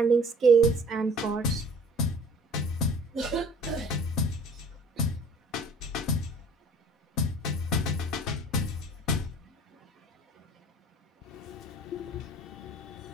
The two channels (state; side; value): normal; both; correlation 0.50